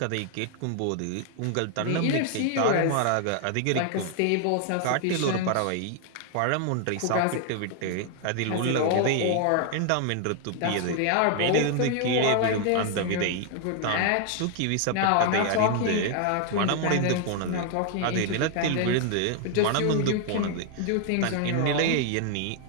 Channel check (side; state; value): both; different; correlation 0.00